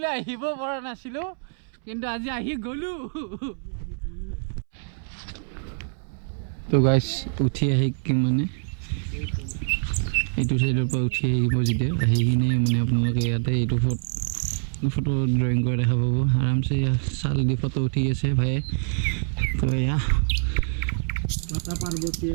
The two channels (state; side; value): silent; left; 62 dB below the other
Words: আহিব পৰা নাছিলোঁ কিন্তু আজি আহি গ'লো তো গাইছ উঠি আহি মানে এইটো চাইডৰ পৰা উঠি আহিব যেতিয়া আহি কিনে মানে আপোনালোকে ইয়াতে এইটো ফটো ড্ৰয়িং কৰা দেখা পাব আৰামছে চাল দি ফটো উঠি আছে ভাইয়ে তো এয়া